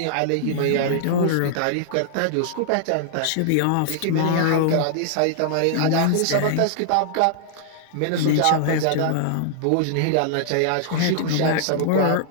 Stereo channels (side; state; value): both; different; correlation -0.01